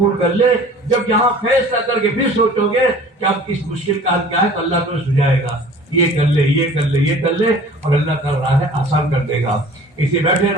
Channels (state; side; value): normal; both; correlation 0.46